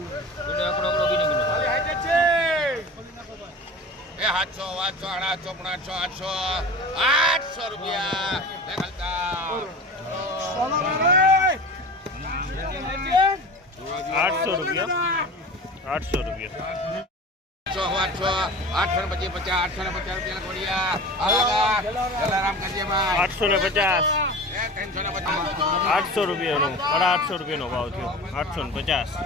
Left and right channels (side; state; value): both; normal; correlation 0.35